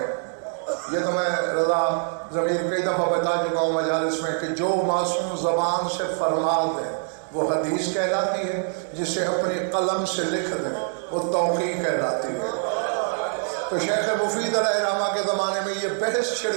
یہ تو میں رضا ضمیر کئی دفعہ بتا چکا ہوں مجالس میں، کہ جو معصوم زبان سے فرما دیں وہ حدیث کہلاتی ہے، جسے اپنی قلم سے لکھ دیں وہ توقیع کہلاتی ہے۔ تو شیخ مفید علیہ رحمہ کے زمانے میں یہ بحث چھڑ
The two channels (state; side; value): silent; left; 62 dB below the other